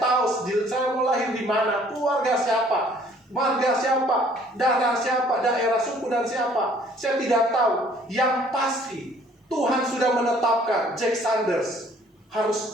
saya mau lahir di mana, keluarga siapa, marga siapa, darah siapa, daerah suku dan siapa. Saya tidak tahu. Yang pasti Tuhan sudah menetapkan Jack Sanders harus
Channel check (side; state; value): both; normal; correlation 0.58